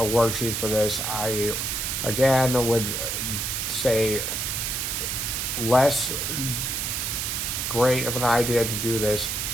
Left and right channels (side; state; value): right; noise; hiss, 1 dB below the sound